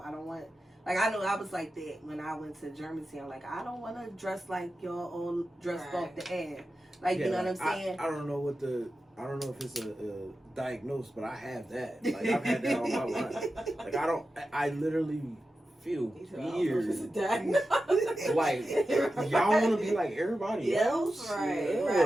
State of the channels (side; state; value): both; normal; correlation 0.92